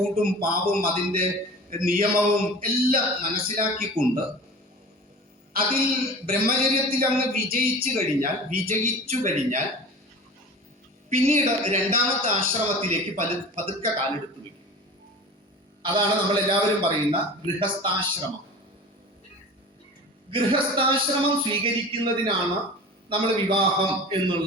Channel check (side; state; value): both; normal; correlation 0.37